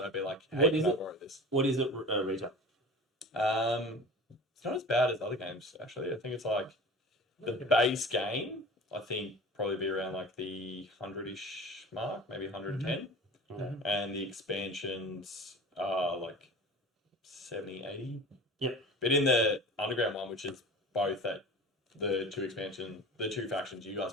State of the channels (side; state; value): both; normal; correlation 0.38